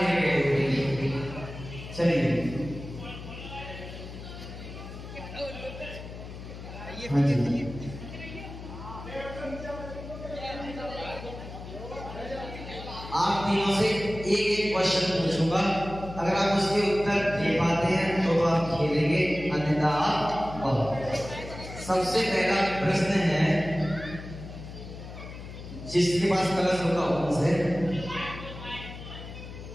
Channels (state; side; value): noise; left; hum, 12 dB below the sound